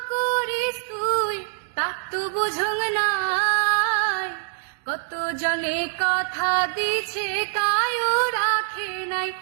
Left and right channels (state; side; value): silent; left; digital silence